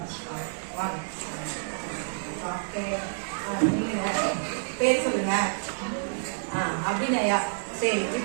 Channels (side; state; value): left; silent; 59 dB below the other